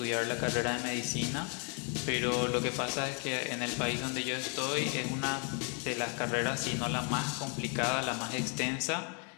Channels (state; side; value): quieter; right; 39.2 dB